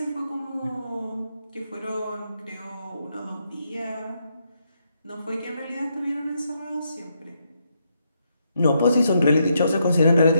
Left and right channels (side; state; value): both; inverted; correlation -0.78